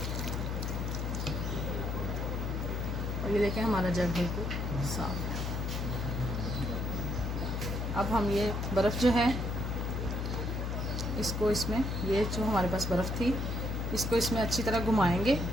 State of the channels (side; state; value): left; noise; hum, 1 dB below the sound